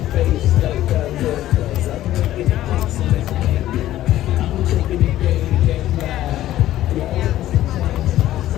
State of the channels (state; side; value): quieter; right; 13.9 dB